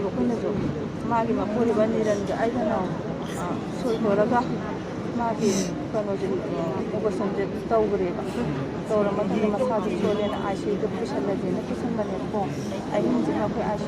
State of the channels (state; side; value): identical; both; correlation 1.00